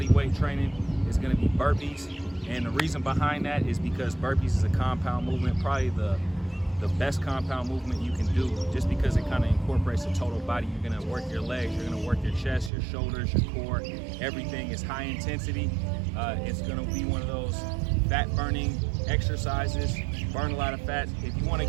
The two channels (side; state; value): left; drops out; at 12.7 s